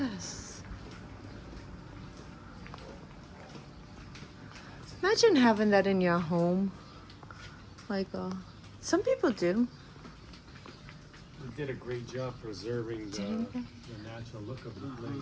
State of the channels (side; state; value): both; identical; correlation 1.00